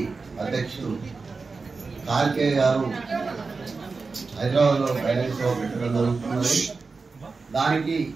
హైదరాబాద్ లో ఫైనాన్స్ పెట్టడం జరుగుతున్నది. దానికి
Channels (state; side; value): quieter; left; 4.3 dB